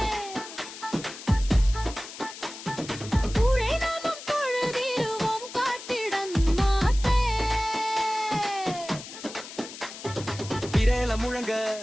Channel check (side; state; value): left; noise; hiss, 13 dB below the sound